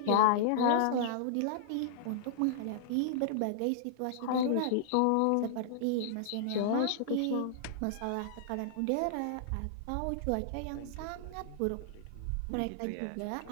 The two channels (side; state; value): both; different; correlation -0.01